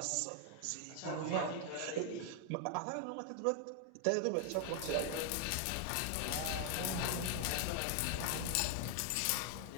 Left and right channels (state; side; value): different; both; correlation 0.00